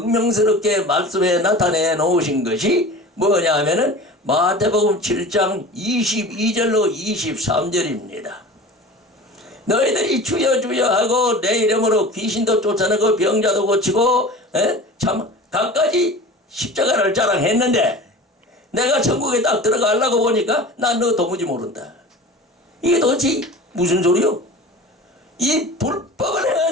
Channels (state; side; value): normal; both; correlation 0.37